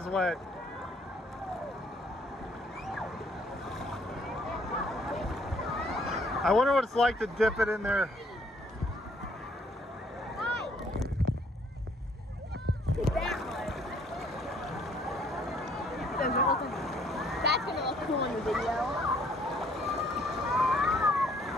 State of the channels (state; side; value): normal; both; correlation 0.63